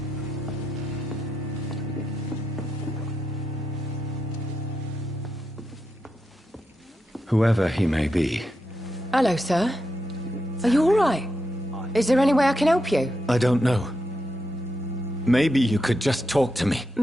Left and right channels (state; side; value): normal; both; correlation 0.85